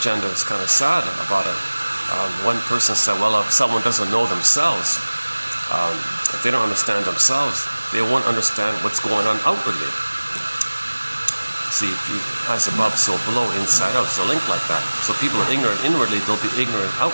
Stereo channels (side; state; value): both; inverted; correlation -1.00